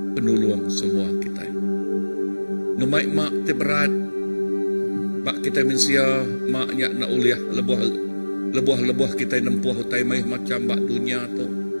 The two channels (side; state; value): both; inverted; correlation -1.00